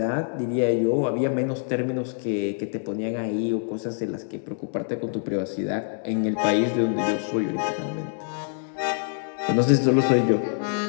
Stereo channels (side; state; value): right; silent; 62 dB below the other